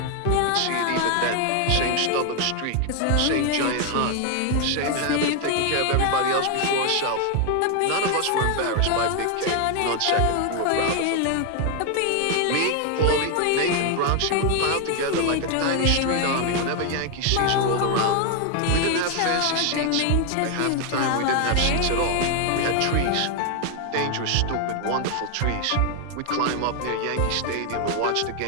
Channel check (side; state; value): both; different; correlation 0.00